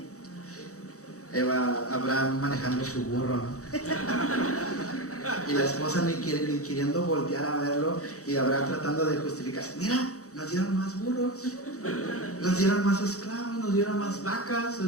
Abraham manejando su burro, ¿no? Y la esposa ni queriendo voltear a verlo, y Abraham tratando de justificarse: mira, nos dieron más burros, nos dieron más esclavos, nos dieron más vacas,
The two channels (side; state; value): right; late; 0.65 ms